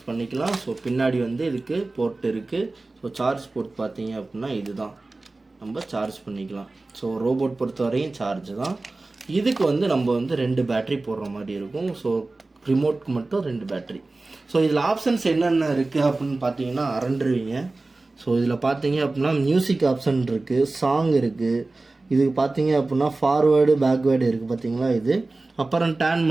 பண்ணிக்கலாம். ஸோ பின்னாடி இதுக்கு போர்ட் இருக்குது. ஸோ சார்ஜ் போர்ட் பார்த்தீங்க அப்படின்னா இதுதான், நம்ம சார்ஜ் பண்ணிக்கலாம். ஸோ ரோபோட் பொறுத்த வரையும் சார்ஜ் தான். இதுக்கு நம்ம 2 பேட்ரி போடுற மாதிரி இருக்கும். ஸோ ரிமோட்க்கு மட்டும் 2 பேட்ரி. ஸோ இதில் ஆப்ஷன்ஸ் என்னென்ன இருக்குது அப்படின்னு பார்த்தீங்கன்னா அரண்டுருவீங்க. ஸோ இதில் பார்த்தீங்க அப்படின்னா மியூசிக் ஆப்ஷன் இருக்குது, சாங் இருக்குது. இதுக்கு பார்த்தீங்க அப்படின்னா ஃபார்வேர்டு பேக்வேர்டு இருக்குது பார்த்தீங்களா? இது அப்புறம் டேர்ன்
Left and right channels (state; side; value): quieter; left; 3.2 dB